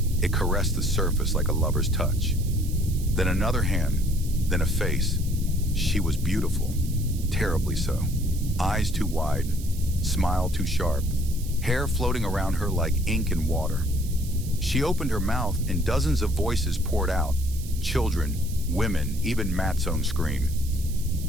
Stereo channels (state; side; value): noise; right; hiss, 16 dB below the sound